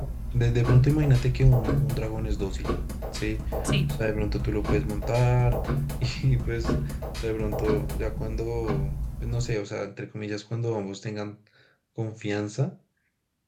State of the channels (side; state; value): both; identical; correlation 1.00